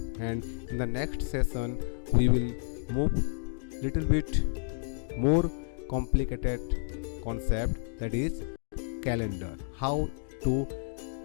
and in the next session we will move little bit more complicated concept, that is calendar, how to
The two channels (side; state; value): right; silent; digital silence